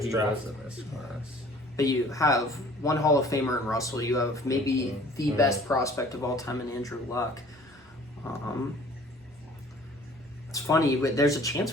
he draft. was in this class. but you have one Hall of Famer in Russell. You have maybe the best prospect of all time in Andrew Luck. It's funny, but there's a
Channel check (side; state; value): both; normal; correlation 0.51